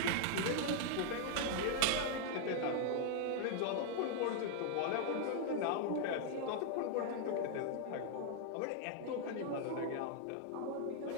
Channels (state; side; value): different; both; correlation 0.00